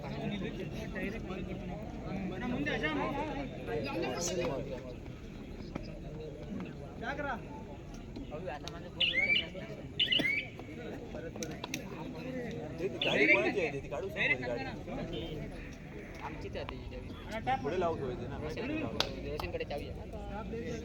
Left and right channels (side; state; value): both; identical; correlation 1.00